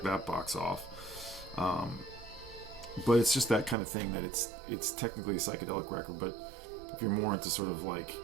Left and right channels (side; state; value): left; drops out; at 3.8 s